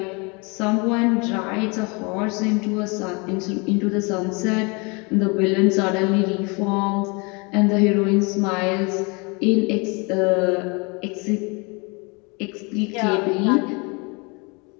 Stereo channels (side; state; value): right; quieter; 29.9 dB